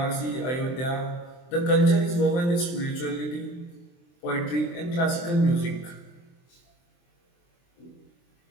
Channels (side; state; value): right; late; 23 ms